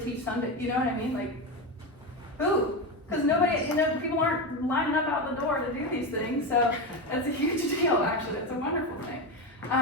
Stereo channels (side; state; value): both; normal; correlation 0.16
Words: teach Sunday? You know what I mean? Like, who? Because nobody, you know, people aren't lining up out the door to do these things. So that's a huge deal, actually. It's a wonderful thing.